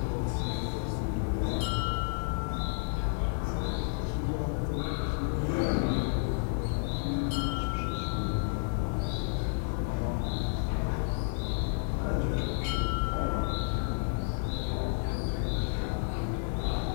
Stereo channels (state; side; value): silent; right; 57 dB below the other